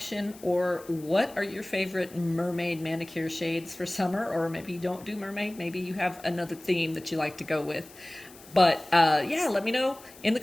or what are your favorite mermaid manicure shades for summer, or maybe you don't do mermaid, maybe you have another theme that you like to go with. But yeah, let me know in the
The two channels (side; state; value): left; noise; hiss, 21 dB below the sound